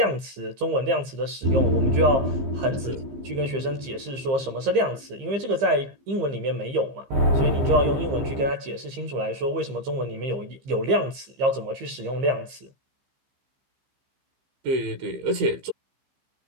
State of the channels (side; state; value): left; late; 15 ms